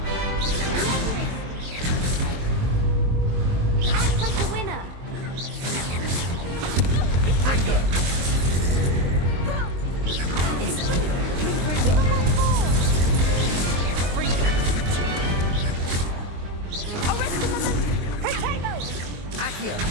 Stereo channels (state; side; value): late; left; 23 ms